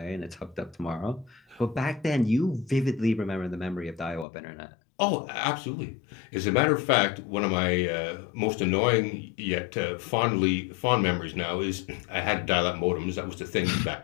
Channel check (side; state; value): right; drops out; at 4.2 s